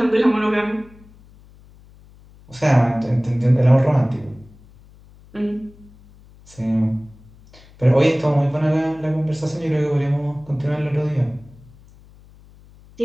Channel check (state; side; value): noise; left; hum, 25 dB below the sound